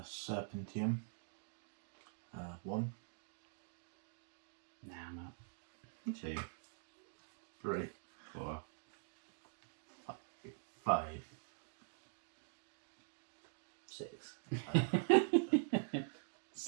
1. Nah, I'm out. 2, 3. 4, 5. 6,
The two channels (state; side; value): silent; left; digital silence